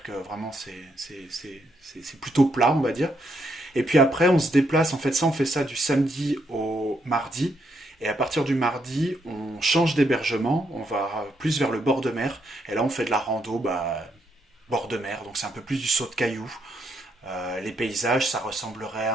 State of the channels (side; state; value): both; normal; correlation 0.76